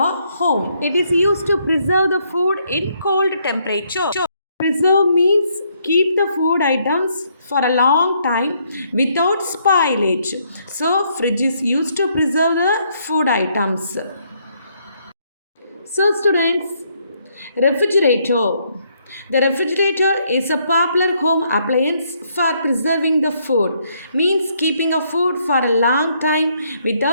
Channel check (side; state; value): both; inverted; correlation -0.71